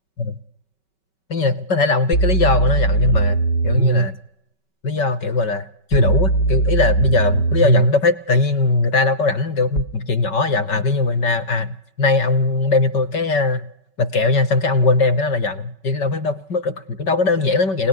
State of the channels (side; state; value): right; late; 5.3 ms